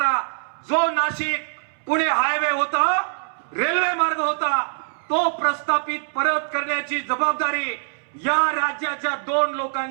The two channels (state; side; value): silent; left; 63 dB below the other